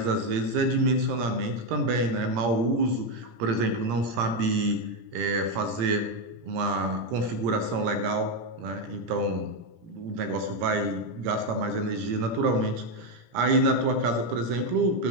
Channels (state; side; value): late; left; 17 ms